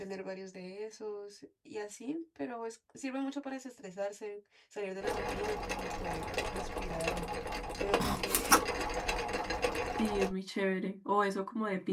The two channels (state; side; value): identical; both; correlation 1.00